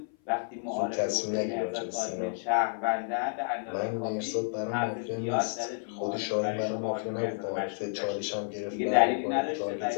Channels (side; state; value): right; silent; 56 dB below the other